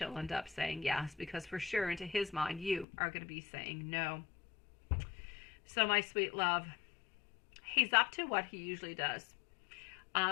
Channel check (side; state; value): right; drops out; at 2.9 s